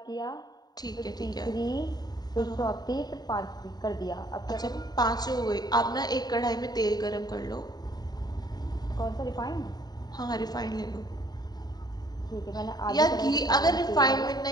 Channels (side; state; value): right; late; 0.19 ms